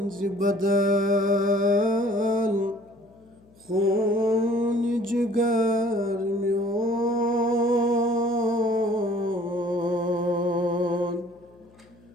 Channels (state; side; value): noise; left; hum, 28 dB below the sound